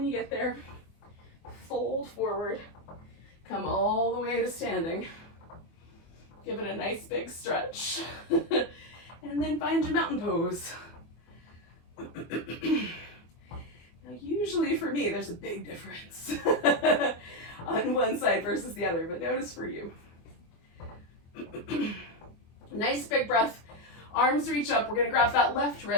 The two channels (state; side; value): late; right; 24 ms